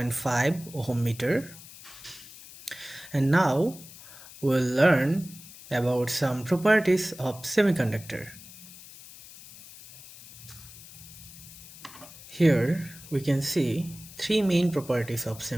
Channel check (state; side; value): noise; left; hiss, 18 dB below the sound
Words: ohm meter. And now we'll learn about some properties of semiconductor. Here we can see three main properties of